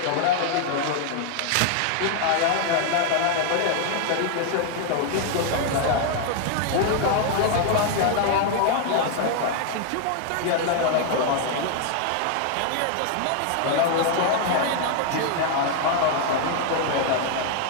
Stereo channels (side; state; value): both; different; correlation 0.00